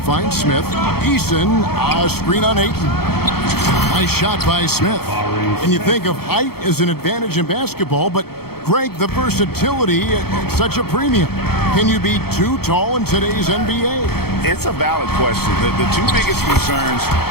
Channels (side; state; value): right; late; 0.95 ms